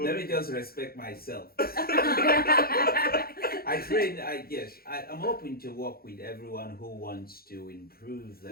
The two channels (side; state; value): right; late; 0.44 ms